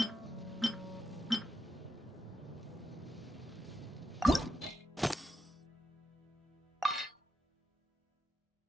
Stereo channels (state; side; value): normal; both; correlation 0.82